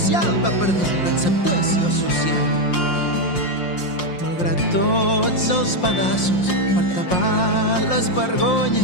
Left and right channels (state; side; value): late; right; 5.6 ms